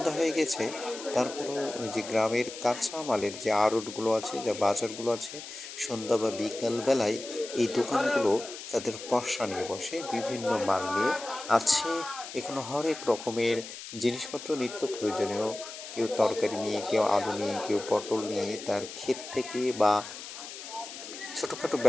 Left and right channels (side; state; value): left; noise; hiss, 12 dB below the sound